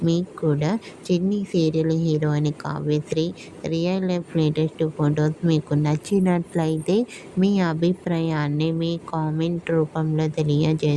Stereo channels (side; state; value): both; identical; correlation 1.00